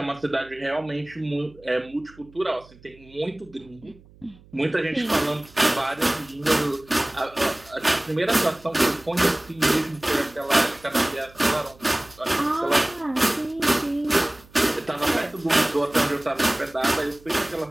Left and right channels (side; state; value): right; noise; hum, 25 dB below the sound